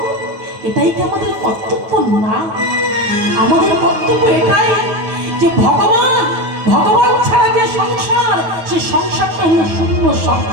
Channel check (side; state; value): left; late; 9.3 ms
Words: এটাই কি আমাদের কর্তব্য না? আমাদের কর্তব্য এটাই যে ভগবান, ভগবান ছাড়া যে সংসার, সে সংসারটা হলো শূন্য